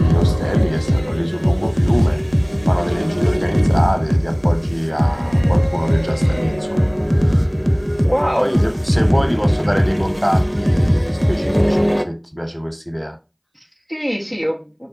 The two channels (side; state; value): both; identical; correlation 1.00